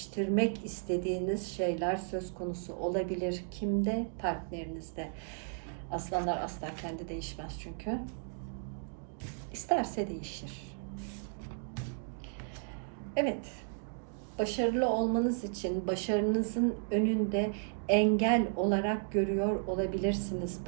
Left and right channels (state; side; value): silent; left; digital silence